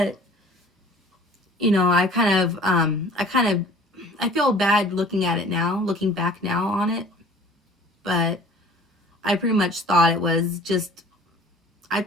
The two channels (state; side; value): normal; both; correlation 0.49